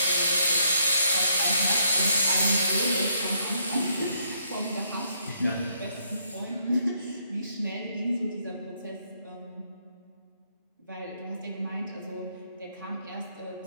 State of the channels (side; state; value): both; inverted; correlation -0.72